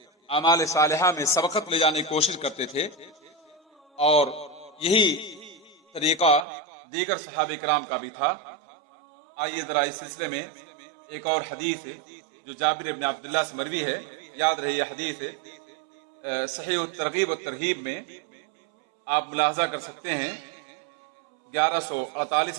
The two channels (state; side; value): drops out; left; at 6.5 s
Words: اعمال صالحہ میں سبقت لے جانے کی کوشش کرتے تھے، اور یہی طریقہ دیگر صحابہ کرام کا بھی تھا۔ آئیے ذرا اس سلسلے میں ایک اور حدیث ہے جو جابر بن عبداللہ سے مروی ہے، یاد رہے یہ حدیث ہے صحیح الترغیب والترہیب میں آپ ملاحظہ کر سکتے ہیں